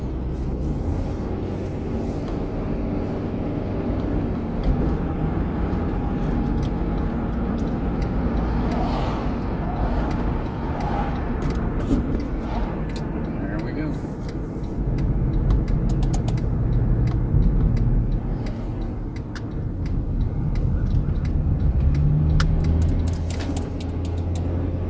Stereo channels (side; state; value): both; identical; correlation 1.00